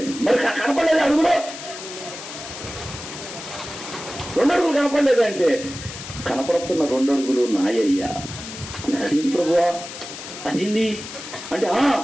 మరి కనపడలేదు అడుగులో, 2 అడుగులు కనపడలేదంటే కనపడుతున్న 2 అడుగులు నాయ్యా. అదేం ప్రభువా, అదేంది అంటే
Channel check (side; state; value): left; noise; hiss, 11 dB below the sound